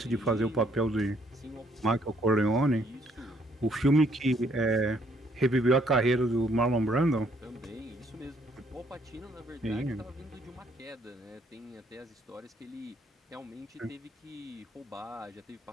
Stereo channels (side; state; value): both; normal; correlation 0.67